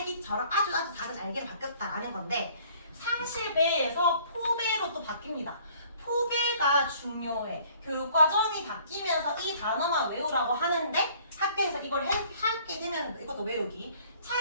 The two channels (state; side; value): inverted; both; correlation -0.57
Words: 아주 작은 알갱이로 바뀌었다라는 건데 상실배에서 포배로 또 바뀝니다. 포배가 중요해. 교육과정이 바뀌면서 이 단어만 외우라고 하는데 학교에서 이걸 하게 되면 이것도 외우기.